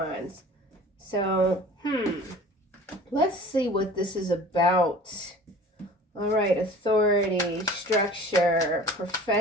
So, let's see what this is about. All right, authority, structure,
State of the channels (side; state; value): both; normal; correlation 0.44